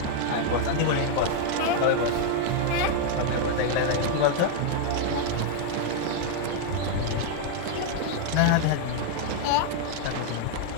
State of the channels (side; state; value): both; different; correlation 0.00